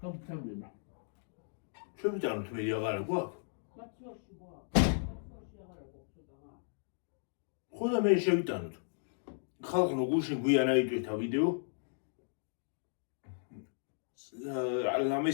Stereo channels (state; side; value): silent; right; digital silence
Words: ჩვენ ვიტანოთ მე აღარა გვაქვს? მაცორში გვაქვს. მაცორში აღარა გვაქვს ცოტა. ხო და მე შევიტანოთ. ხალხო გუშინ გვიან აიტვირთა ვიდეო. ლამე